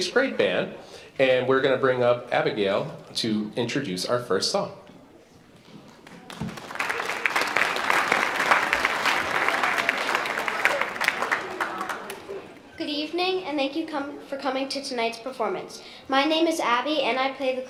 grade band, and we're going to bring up Abigail to introduce our first song. Good evening, and thank you for coming to tonight's performance. My name is Abby, and I play the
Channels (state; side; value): identical; both; correlation 1.00